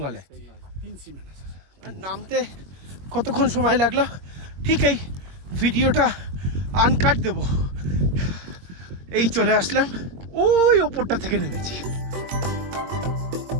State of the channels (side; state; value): left; late; 22 ms